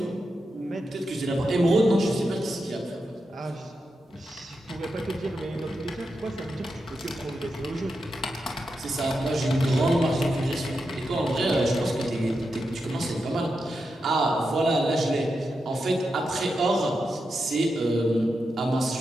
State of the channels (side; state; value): both; normal; correlation 0.87